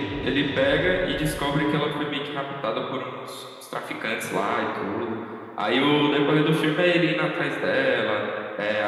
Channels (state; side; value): identical; both; correlation 1.00